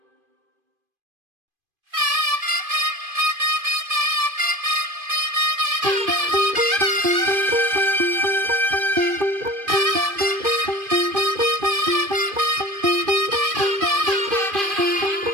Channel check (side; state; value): left; late; 2.5 ms